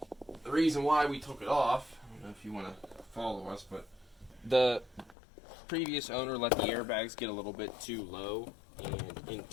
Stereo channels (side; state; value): right; drops out; at 5.2 s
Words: the reason why we took it off, I don't know if you want to follow us, but the previous owner let the airbags get a little bit too low, and in